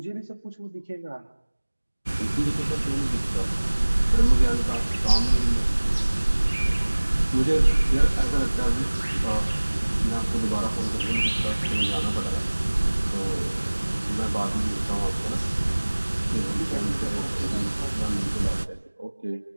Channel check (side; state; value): both; inverted; correlation -1.00